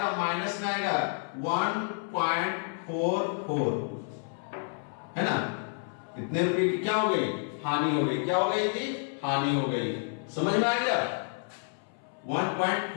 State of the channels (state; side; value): silent; right; 56 dB below the other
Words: माइनस में आएगा 1.44, है ना। कितने रुपए की क्या हो गई, हानि हो गई। क्या हो गई थी, हानि हो गई। समझ में आ गया,